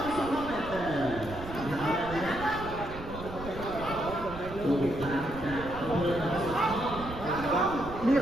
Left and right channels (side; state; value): right; noise; rumble, 12 dB below the sound